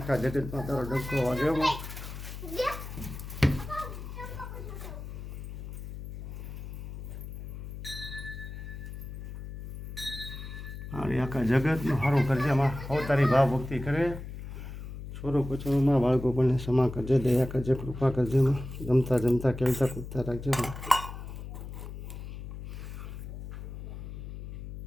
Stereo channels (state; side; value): noise; left; hum, 9 dB below the sound